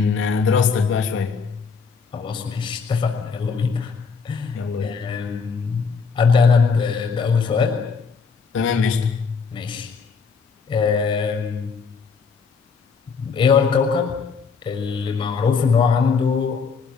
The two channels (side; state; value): right; quieter; 5.4 dB